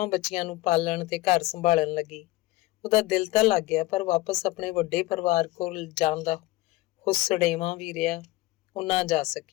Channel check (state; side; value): quieter; right; 18.6 dB